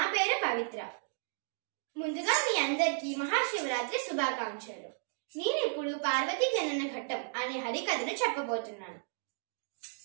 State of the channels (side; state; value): left; silent; digital silence